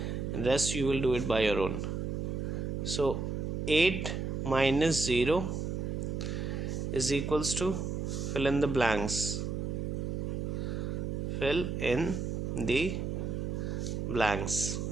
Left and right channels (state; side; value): noise; right; hum, 2 dB below the sound